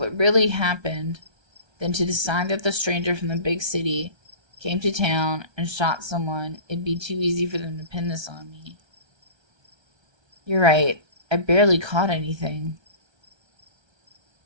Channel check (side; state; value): left; late; 1.3 ms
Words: really happened than to decide that the stranger from the big city came to town and shot someone. It'd be too easy for them to pin this on me. You're right. I barely caught anything.